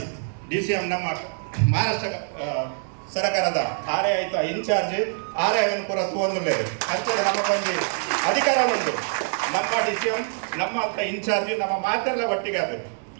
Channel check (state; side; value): silent; left; 60 dB below the other